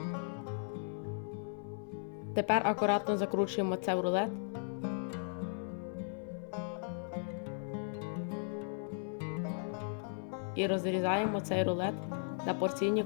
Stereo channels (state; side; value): silent; right; 53 dB below the other